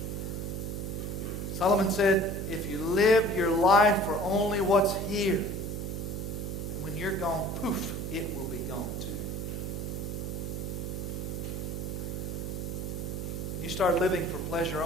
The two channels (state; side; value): noise; right; hum, 4 dB below the sound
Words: Solomon said, if you live your life for only what's here, then when you're gone, poof, it will be gone too. When you start living for pleasure